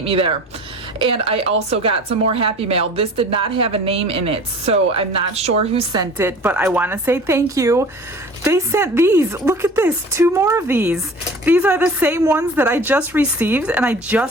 me there. And I also got some more Happy Mail. This did not have a name in it, so I'm not sure who sent it, but I want to say thank you. They sent these. Look at this, 2 more of these. These are the same ones that I just received, and I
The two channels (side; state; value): both; normal; correlation 0.43